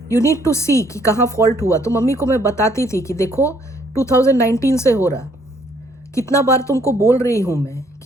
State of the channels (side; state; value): both; normal; correlation 0.65